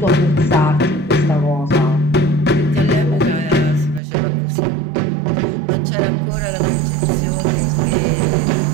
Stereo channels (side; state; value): left; drops out; at 4.0 s